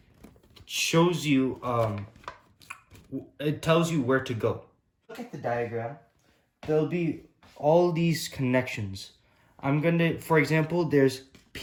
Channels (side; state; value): both; identical; correlation 1.00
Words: shows you, it tells you where to go. Look at the diagram. There'll be all these connections. For example, there's